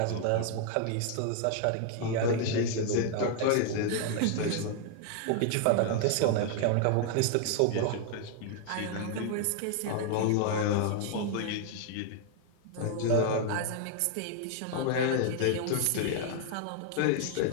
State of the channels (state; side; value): different; both; correlation 0.00